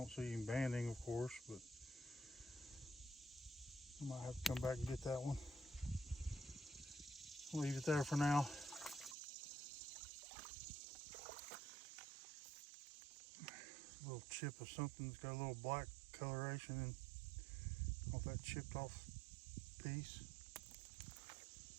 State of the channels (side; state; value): left; drops out; at 9.2 s